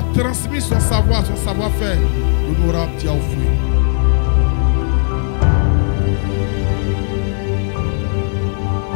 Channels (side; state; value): right; silent; 64 dB below the other